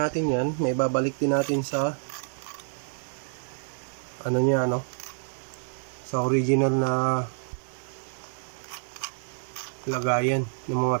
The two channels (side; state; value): left; silent; digital silence